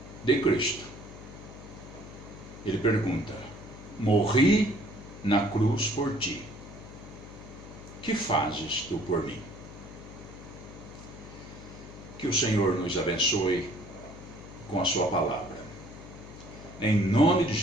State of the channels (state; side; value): noise; left; hum, 15 dB below the sound